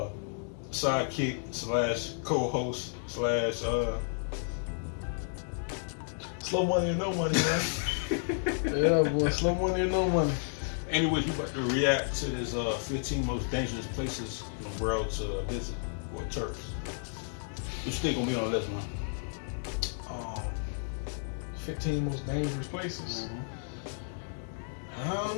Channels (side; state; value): right; silent; digital silence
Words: sidekick slash co-host slash slow money or no money, man. Yeah, boy, slow money or no money. Anyways, we about to react to this 15 most dangerous places in the world to visit for tourists. What you think gonna be on the list, man? 15 most dangerous places. Mm-hmm. I